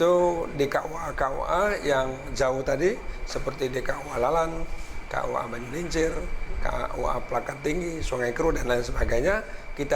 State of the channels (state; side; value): identical; both; correlation 1.00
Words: di KUA yang jauh tadi, seperti di KUA Lalan, KUA Banyulincir, KUA Plakat Tinggi, Sungai Kru, dan lain sebagainya.